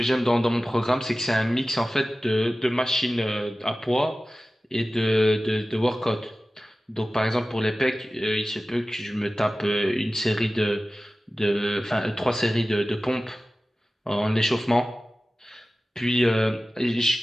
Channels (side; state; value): both; normal; correlation 0.96